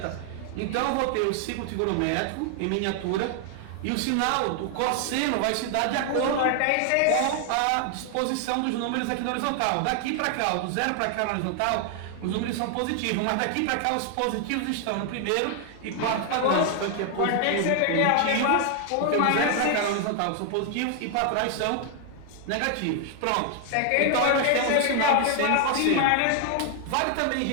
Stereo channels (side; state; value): both; different; correlation 0.00